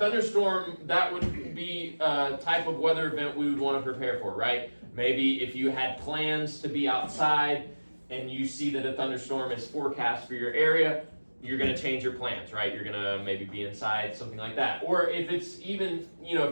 that would be a type of weather event we would want to prepare for, right? Maybe if you had plans to be outside and you see that a thunderstorm is forecast for your area, you're going to change your plans, right? You're going to maybe be inside, something like that. Or if it's even,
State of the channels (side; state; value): both; inverted; correlation -1.00